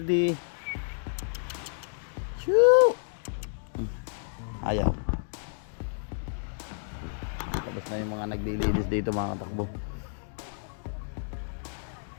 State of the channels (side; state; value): right; silent; digital silence